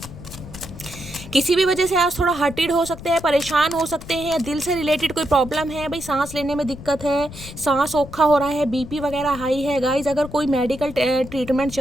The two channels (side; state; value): left; noise; rumble, 14 dB below the sound